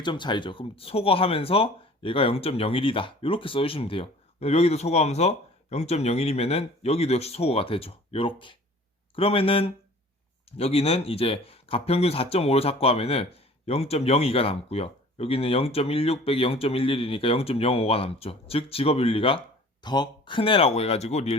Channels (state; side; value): normal; both; correlation 0.47